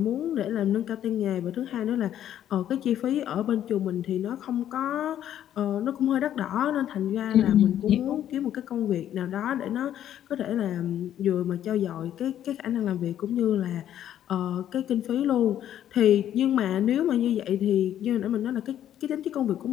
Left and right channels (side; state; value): right; quieter; 11.0 dB